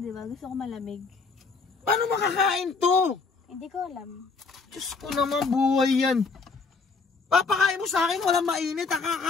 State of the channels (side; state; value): right; quieter; 4.5 dB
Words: ba? Gusto ko malamig. Paano makakain to? Hindi ko alam. Diyos ko naman, buhay yan. Papakain mo sa akin, walang mainit.